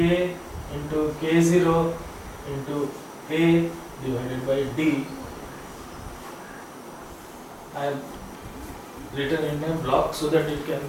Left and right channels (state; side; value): identical; both; correlation 1.00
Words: into K0 into A divided by D. I have written in a block so that it can